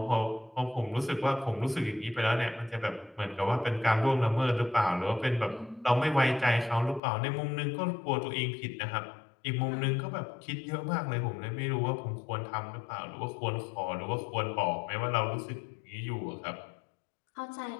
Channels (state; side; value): drops out; right; at 7.0 s